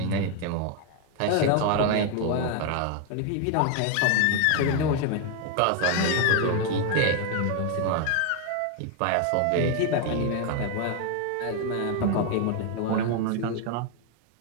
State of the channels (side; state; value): both; different; correlation 0.01